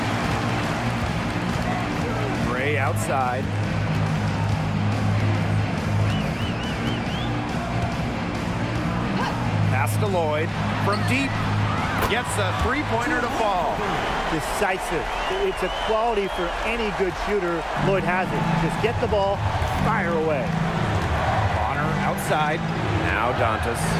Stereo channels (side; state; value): both; identical; correlation 1.00